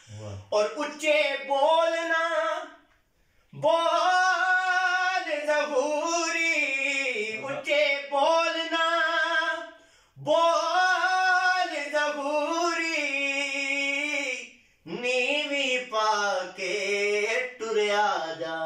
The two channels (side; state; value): both; identical; correlation 1.00